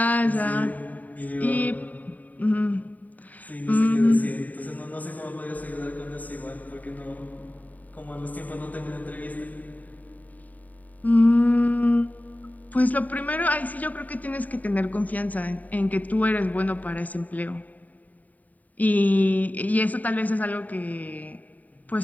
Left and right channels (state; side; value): late; right; 0.076 ms